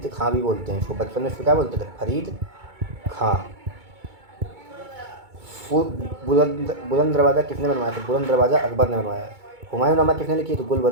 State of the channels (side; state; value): left; late; 2.2 ms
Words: खां भी बोलते हैं, इसको बचपन में इसको क्या बोलते थे? फरीद खां। बुलंद दरवाज़ा किसने बनवाया? तो बुलंद दरवाज़ा अकबर ने बनवाया। हुमायूंनामा किसने लिखी? तो